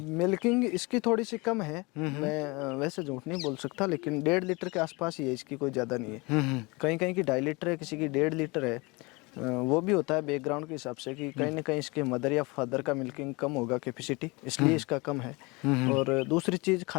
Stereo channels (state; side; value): quieter; right; 26.2 dB